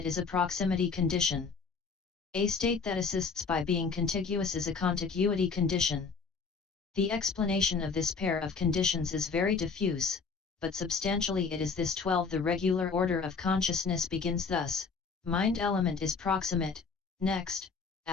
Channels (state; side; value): quieter; right; 5.0 dB